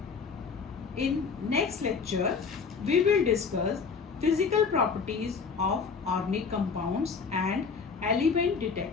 In next lecture, we will discuss physical properties of organic compounds and element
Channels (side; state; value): right; quieter; 5.4 dB